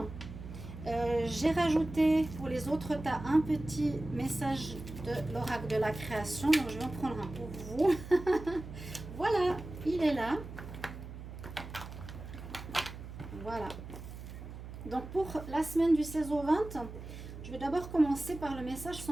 j'ai rajouté pour les autres tas un petit message de l'oracle de la création. Donc je vais en prendre un pour vous. Voilà, il est là. Voilà. Donc pour la semaine du 16 au 20, je vais d'abord commencer par le message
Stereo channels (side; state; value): right; noise; hum, 11 dB below the sound